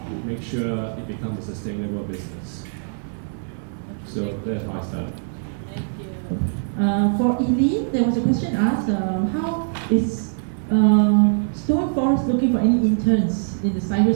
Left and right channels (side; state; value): left; silent; 63 dB below the other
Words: make sure it becomes a sustainable business. So that's how I started. Thank you. For Eileen, there was a question asked, how is Stone Forest looking for any interns in the